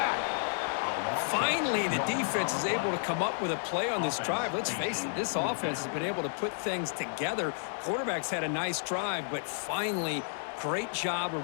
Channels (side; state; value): right; silent; 57 dB below the other